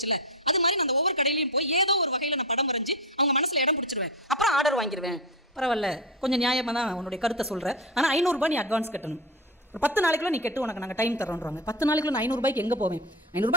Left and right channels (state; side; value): normal; both; correlation 0.20